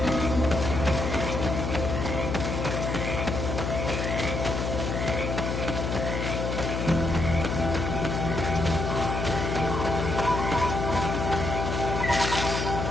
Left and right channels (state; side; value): noise; left; hum, 2 dB below the sound